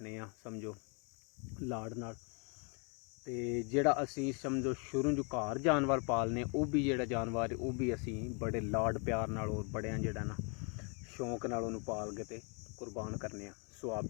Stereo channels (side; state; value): right; quieter; 36.1 dB